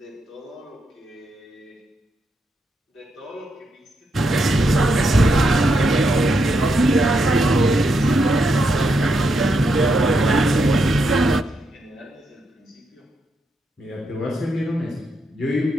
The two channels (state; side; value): normal; both; correlation 0.81